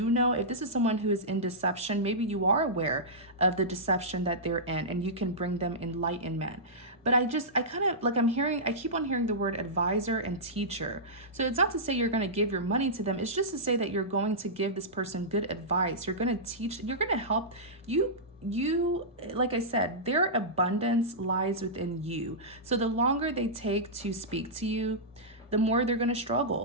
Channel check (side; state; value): both; normal; correlation -0.14